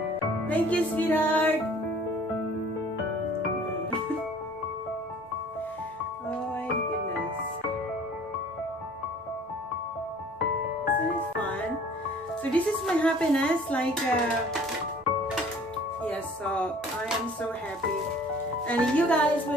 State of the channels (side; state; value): both; normal; correlation 0.51